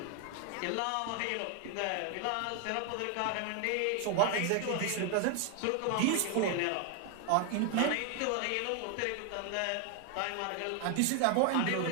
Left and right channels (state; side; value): different; both; correlation 0.01